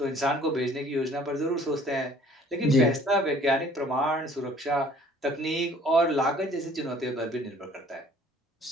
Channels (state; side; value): normal; both; correlation 0.54